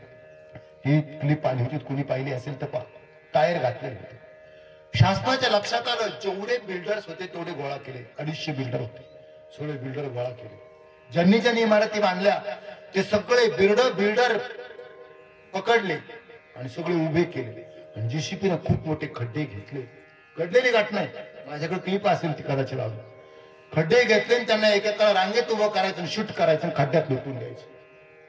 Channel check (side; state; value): both; identical; correlation 1.00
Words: ही क्लिप आली होती, कुणी पाहिली असेल तर पहा. टायर घातलेले होते. शासनाच्या लक्षात आलं, जेवढे बिल्डर्स होते तेवढे गोळा केले. 250 बिल्डर होते, सगळे बिल्डर गोळा केले. ज्यांनी ज्यांनी इमारती बांधल्या ते सगळे बिल्डर पकडले आणि सगळे उभे केले. आणि JCPने खूप मोठे खड्डे घेतले. घडलेली घटना आहे, माझ्याकडे क्लिप असेल ती कदाचित लावून. खड्डे घेतले आणि त्यांना एकेका रांगेत उभं करायचं, शूट करायचं आणि खड्ड्यात लुटून द्यायचं.